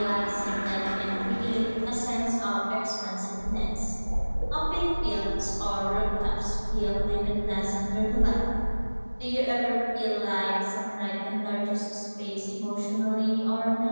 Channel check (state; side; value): inverted; both; correlation -1.00